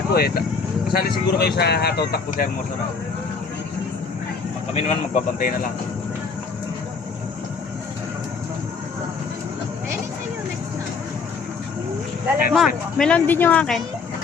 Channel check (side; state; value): right; quieter; 5.1 dB